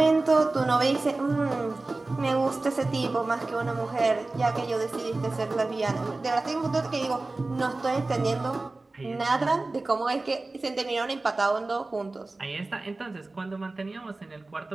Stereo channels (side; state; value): left; quieter; 3.2 dB